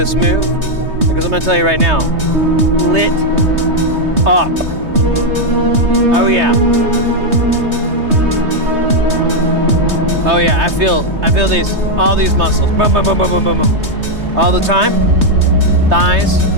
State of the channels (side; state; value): left; late; 3.2 ms